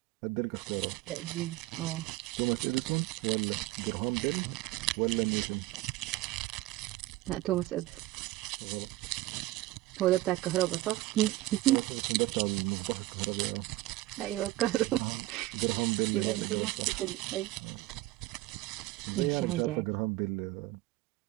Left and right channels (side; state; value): left; quieter; 17.9 dB